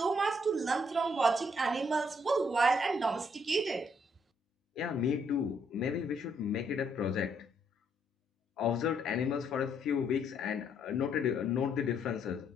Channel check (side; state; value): both; normal; correlation 0.71